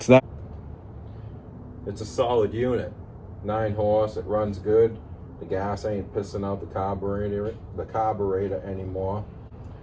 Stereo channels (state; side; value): identical; both; correlation 1.00